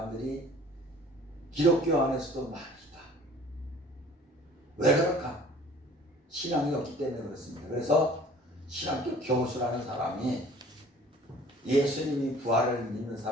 기독교 안에서도 많이 있다. 왜 그럴까? 신앙이 없기 때문에 그렇습니다. 그래서 신학교 교수라는 사람이 예수님이 부활을 믿는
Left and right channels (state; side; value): normal; both; correlation 0.50